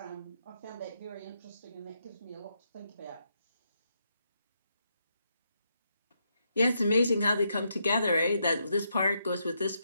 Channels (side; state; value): both; inverted; correlation -0.80